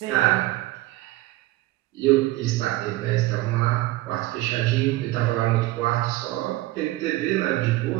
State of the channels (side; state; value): left; quieter; 17.9 dB